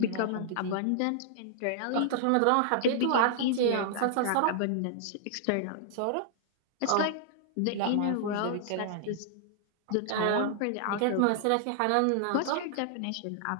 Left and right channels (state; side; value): different; both; correlation -0.01